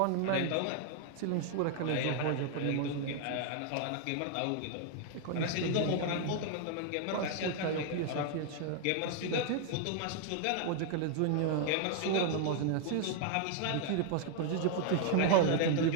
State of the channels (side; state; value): both; different; correlation 0.00